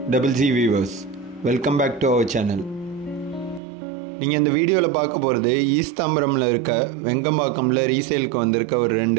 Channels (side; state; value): left; drops out; at 3.6 s